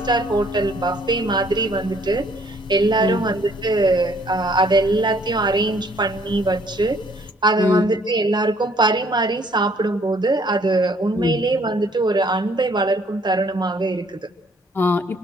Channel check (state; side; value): normal; both; correlation 0.62